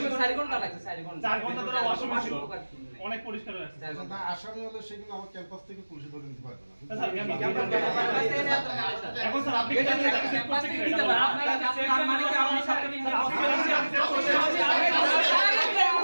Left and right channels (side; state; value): both; inverted; correlation -1.00